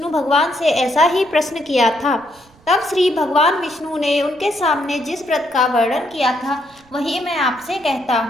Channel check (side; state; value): right; noise; rumble, 29 dB below the sound